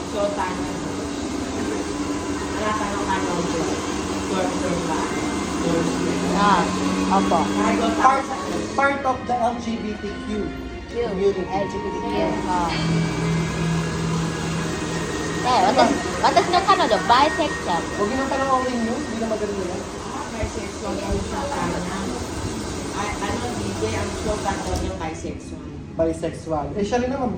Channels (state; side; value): identical; both; correlation 1.00